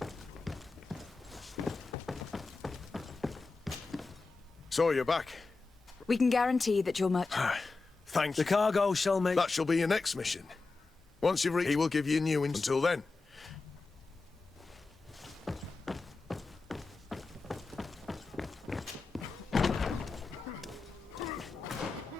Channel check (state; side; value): quieter; right; 3.9 dB